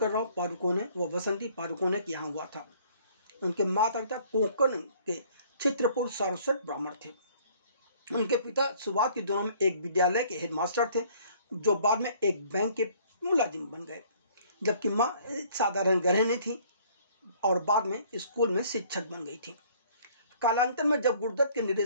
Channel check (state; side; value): inverted; both; correlation -0.57